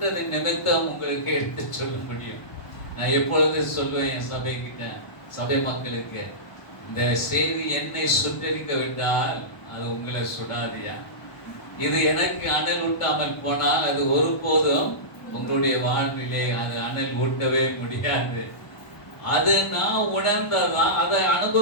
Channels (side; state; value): right; late; 1.0 ms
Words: நிமித்தம் உங்களுக்கு எடுத்து சொல்ல முடியும். நான் எப்பொழுதும் சொல்லுவேன் என் சபை மக்களுக்கு, இந்த செய்தி என்னை சுட்டரிக்க விட்டால் அது உங்களை சுடாதியா? இது எனக்கு அனல் ஊட்டாமல் போனால் அது ஒருபோதும் உங்களுடைய வாழ்விலே அது அனல் ஊட்டவே முடியாது. அது நான் உணர்ந்ததான், அதை